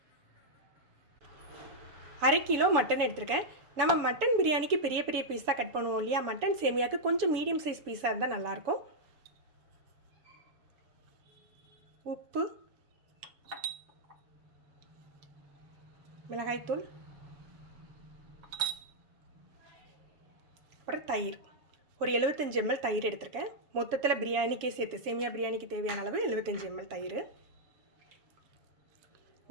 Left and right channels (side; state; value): left; late; 7.1 ms